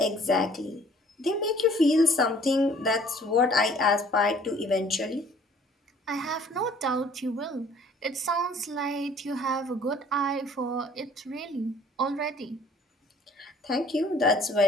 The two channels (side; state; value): both; normal; correlation 0.55